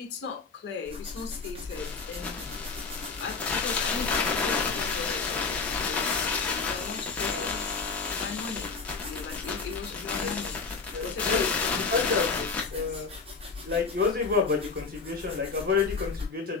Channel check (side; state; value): right; quieter; 4.7 dB